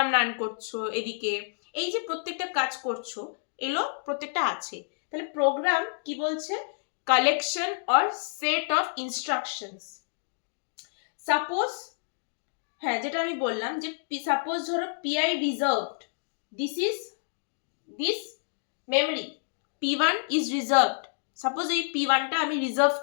রান করছো, এদিকে এই যে প্রত্যেকটা কাজ করছো এগুলো প্রত্যেকটা আছে। তাহলে প্রোগ্রাম কি বলছে? Collection or set of instructions. Suppose, হ্যাঁ যেটা আমি বললাম যে সাপোজ ধরো PI reserved, this memory P1 is reserved. Suppose এই P1টা আমি রিজার্ভ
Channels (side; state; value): right; silent; digital silence